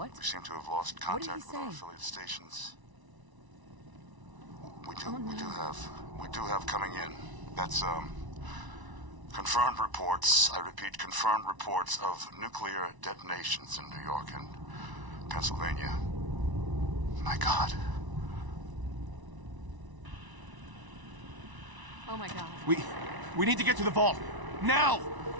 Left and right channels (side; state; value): left; late; 1.0 ms